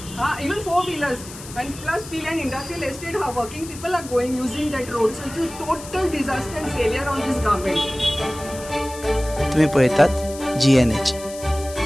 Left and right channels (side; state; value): left; noise; hiss, 15 dB below the sound